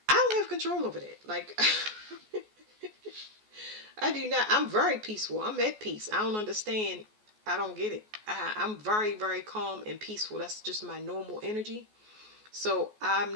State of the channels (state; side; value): late; left; 14 ms